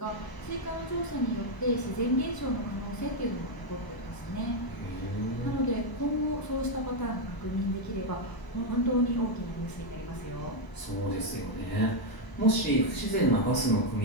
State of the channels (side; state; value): right; late; 1.0 ms